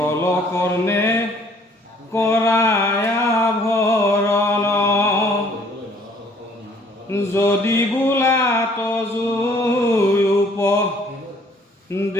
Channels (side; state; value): both; normal; correlation 0.59